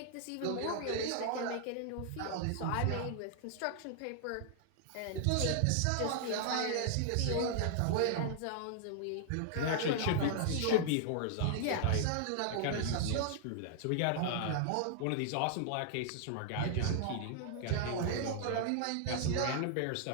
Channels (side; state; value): both; different; correlation -0.01